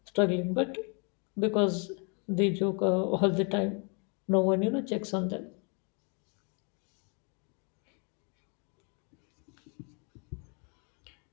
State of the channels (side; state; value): right; quieter; 35.9 dB